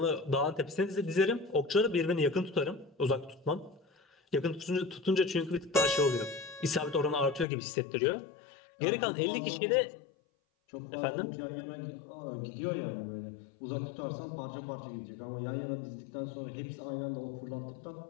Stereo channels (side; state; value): right; drops out; at 7.5 s